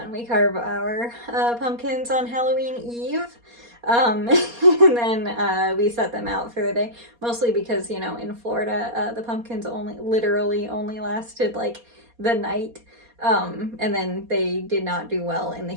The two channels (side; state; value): left; late; 4.2 ms